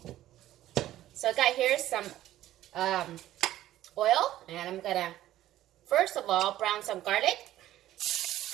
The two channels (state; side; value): quieter; left; 13.8 dB